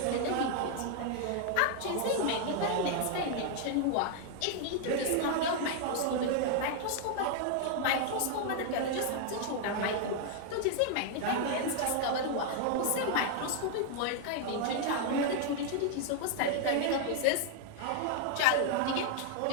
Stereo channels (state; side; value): different; both; correlation 0.00